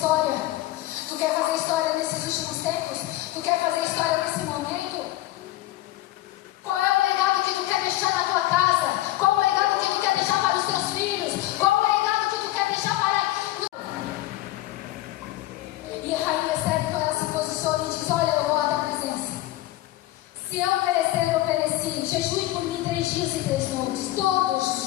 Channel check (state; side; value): quieter; right; 16.1 dB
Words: Tu quer fazer história nesses últimos tempos? Tu quer fazer história nesse momento? Qual é o legado que tu quer deixar na tua casa? Qual o legado que tu quer deixar para os teus filhos? Qual o legado que tu quer deixar para... E a Rainha Esther, então, ela se posiciona e diz: olha, eu vou à tua presença. Se eu perecer, eu pereci. Jejue por mim 3 dias e 3 noites, todos